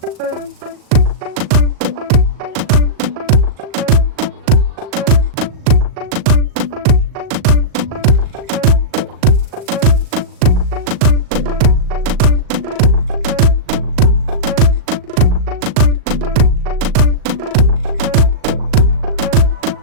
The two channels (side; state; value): left; late; 38 ms